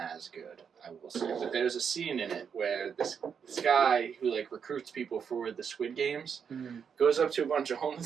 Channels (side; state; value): left; quieter; 7.0 dB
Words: as good, I will say. But there's a scene in it where this guy who like recruits people for the Squid Games goes up to a bunch of